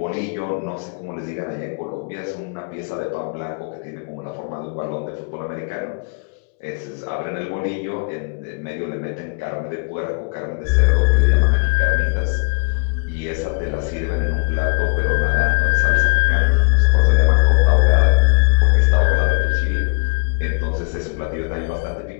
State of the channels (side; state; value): right; quieter; 39.3 dB